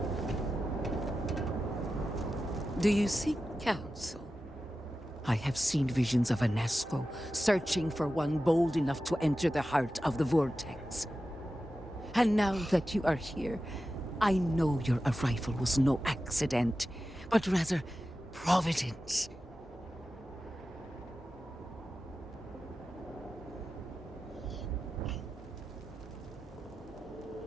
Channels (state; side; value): normal; both; correlation 0.93